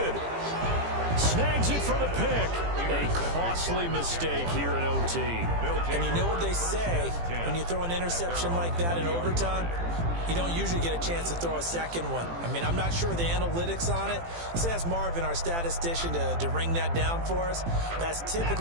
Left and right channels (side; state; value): left; late; 18 ms